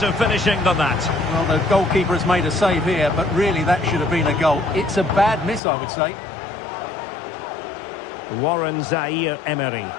finishing than that. Well, the goalkeeper has made a save here, but really that should have been a goal. It's a bad miss, I would say. Warren Zaire-Emery.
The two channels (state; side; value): drops out; right; at 5.6 s